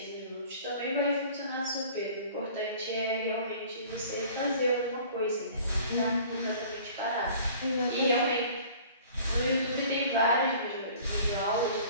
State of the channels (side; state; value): both; inverted; correlation -0.48